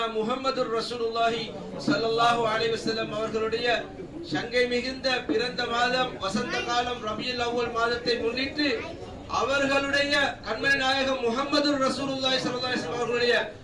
முஹம்மதுர் ரசூலுல்லாஹி ஸல்லல்லாஹு அலைஹி வஸல்லம் அவர்களுடைய சங்கை மிகுந்த பிறந்த மாதம் வசந்த காலம் ரபியுல் அவ்வல் மாதத்தை முன்னிட்டு அவர்களுடைய கண்மணி நாயகம் முஹம்மதுர் ரசூலுல்லாஹி ஸல்லல்லாஹு அலைஹி வஸல்லம் அவர்களுடைய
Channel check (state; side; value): identical; both; correlation 1.00